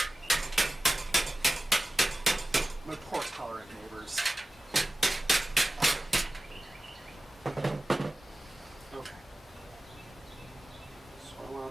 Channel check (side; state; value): both; normal; correlation 0.96